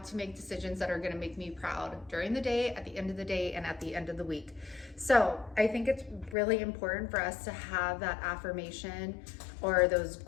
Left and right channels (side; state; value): right; drops out; at 6.4 s